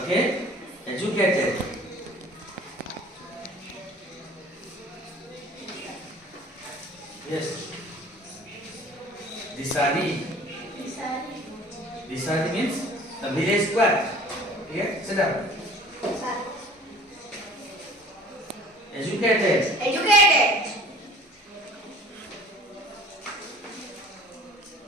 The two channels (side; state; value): both; normal; correlation 0.48